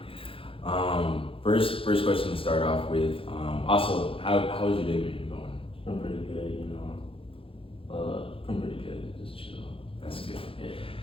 right. First question to start off with. Also, how's your day been going? It's been pretty good, been pretty good. Just chill. That's good.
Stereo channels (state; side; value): late; right; 0.27 ms